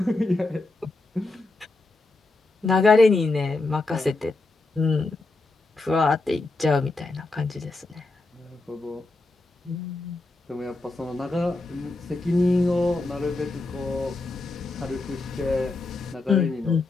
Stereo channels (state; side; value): quieter; right; 3.2 dB